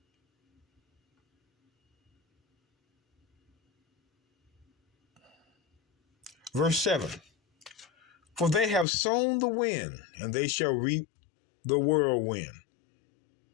Verse 7. For they have sown the wind, and they shall reap the whirlwind.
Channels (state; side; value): drops out; right; at 8.8 s